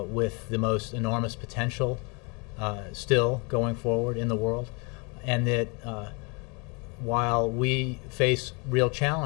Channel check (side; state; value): right; quieter; 31.8 dB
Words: with the most enormous potential still going forward in the world, and that while we face real